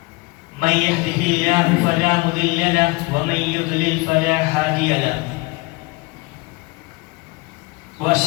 من يهده الله فلا مضل له ومن يضلل فلا هادي له.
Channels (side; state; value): right; quieter; 23.9 dB